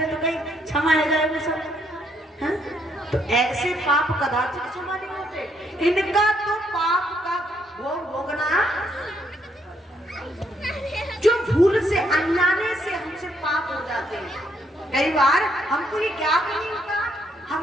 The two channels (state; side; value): normal; both; correlation 0.72